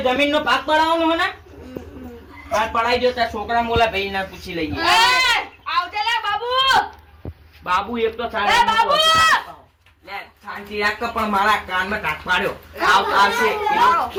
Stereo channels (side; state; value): both; identical; correlation 1.00